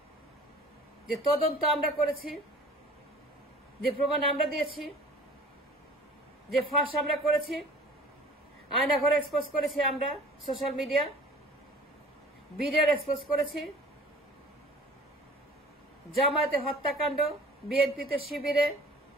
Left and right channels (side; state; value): both; normal; correlation 0.46